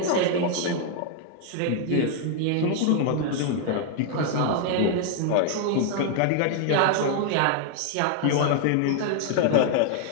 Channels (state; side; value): different; both; correlation 0.00